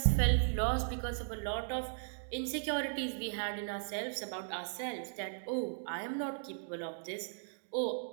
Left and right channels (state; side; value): silent; left; digital silence